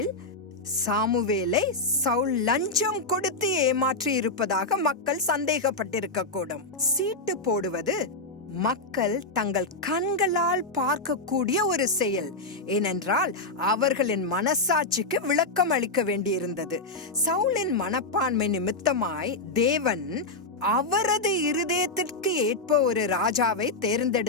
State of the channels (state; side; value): quieter; right; 3.0 dB